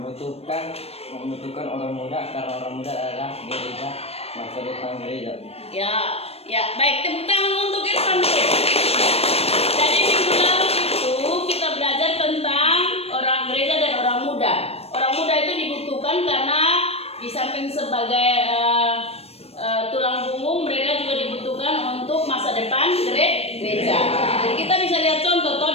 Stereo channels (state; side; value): late; right; 0.29 ms